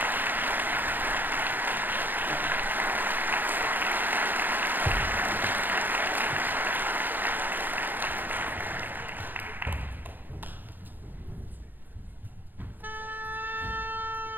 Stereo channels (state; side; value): late; left; 0.088 ms